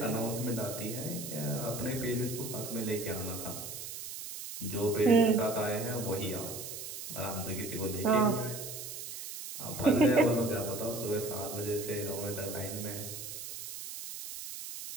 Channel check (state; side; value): noise; right; hiss, 8 dB below the sound